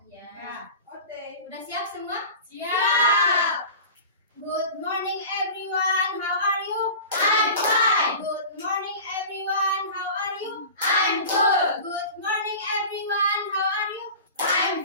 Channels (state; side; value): inverted; both; correlation -0.36